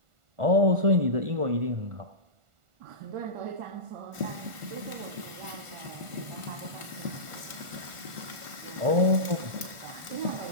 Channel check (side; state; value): left; late; 1.4 ms